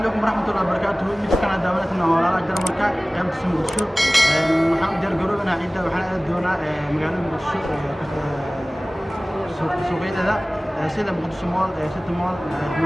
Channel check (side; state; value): both; normal; correlation 0.98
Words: عليكم ورحمة الله وبركاته. midkan daawanayna walaalaha jarmalka qaybta Muqdisho waxaan u diyaargaroobnaa ciidda waxaan aad doonaa magaalada Muqdisho suuqyada sida Muqdisho Mall, City Mall,